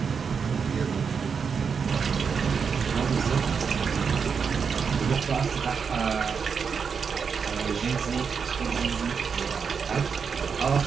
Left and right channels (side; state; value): left; quieter; 6.1 dB